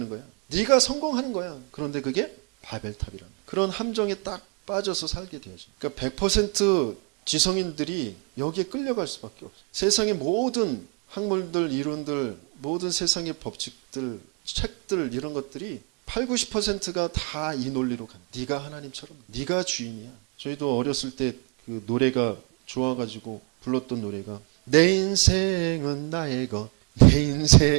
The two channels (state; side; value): quieter; left; 33.6 dB